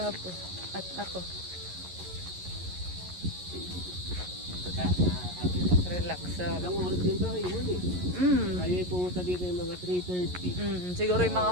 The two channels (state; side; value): late; left; 11 ms